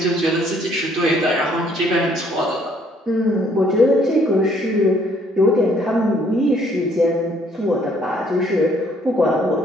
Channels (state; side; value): normal; both; correlation 0.64